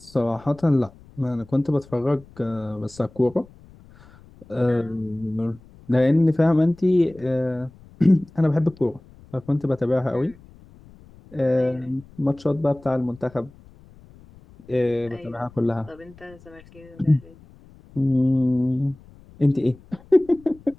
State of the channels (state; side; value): noise; left; rumble, 24 dB below the sound